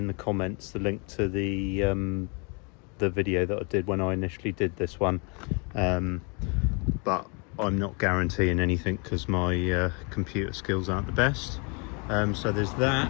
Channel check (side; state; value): right; quieter; 33.1 dB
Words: the comments, the link to the video that I did when I initially did this one. But I'm not guaranteeing anything because my computer skills aren't the best. So there's that.